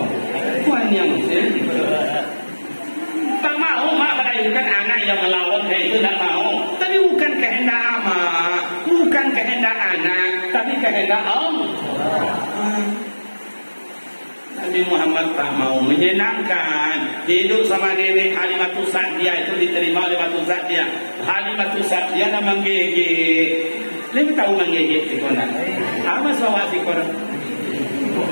tuan yang tak mau mak melahirkan anak yang melawan itu tak mau. Tapi bukan kehendak amak, bukan kehendak anak, tapi kehendak Allah. Nabi Muhammad tak mau menyenangkan hidup sama nenek Halimatus Sa'diyah itu diterima oleh Halimatus Sa'diyah. Halimatus Sa'diyah nak menggigit. Lebih tahu menggigit si konak. Apa sahaja si konak?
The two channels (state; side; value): inverted; both; correlation -1.00